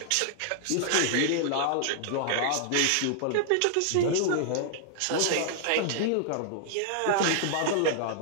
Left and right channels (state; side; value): different; both; correlation -0.01